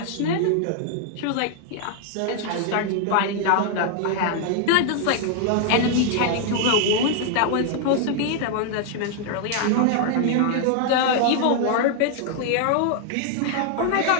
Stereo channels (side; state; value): both; different; correlation 0.00